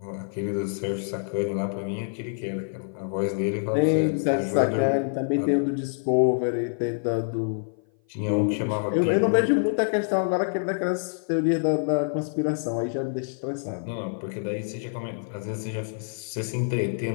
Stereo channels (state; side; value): silent; right; 56 dB below the other